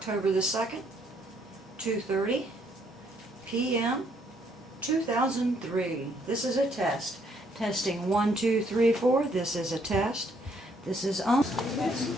the 2nd, 2:30 p.m. 2003. This is a test. Testing 1, 2, 3, 4. This is a test. This is on.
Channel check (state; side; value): normal; both; correlation 0.69